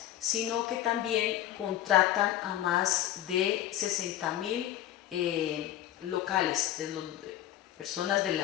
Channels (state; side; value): quieter; right; 12.9 dB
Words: sino que también contratan a más de 60.000 locales, personas de